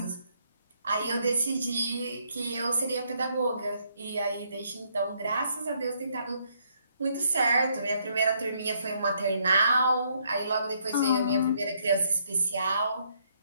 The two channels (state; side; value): inverted; both; correlation -0.71